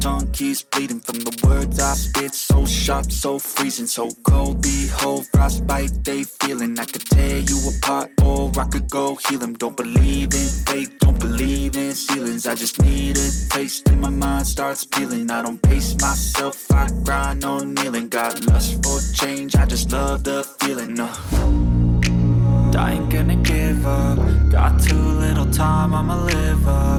keeps bleeding from the words I spit. So sharp, so freezing, so cold. Behold, frostbite they feeling. I could tear you apart or I could go heal them. Don't believe in fate, don't believe in ceilings. I just need a taste and my mind starts peeling. I don't pace myself, I grind on kneeling. Got lust for change, I just love the feeling. I ain't gonna give up. Got too little time, I'ma live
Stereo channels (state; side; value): identical; both; correlation 1.00